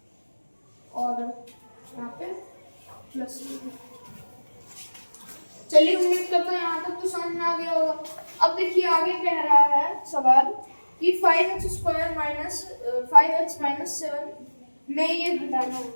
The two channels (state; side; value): inverted; both; correlation -1.00